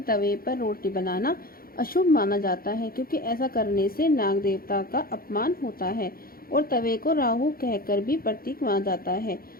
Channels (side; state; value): right; late; 0.43 ms